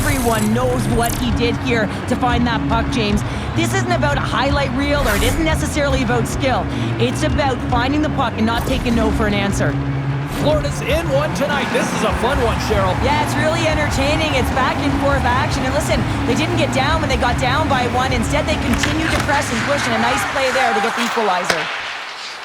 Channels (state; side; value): identical; both; correlation 1.00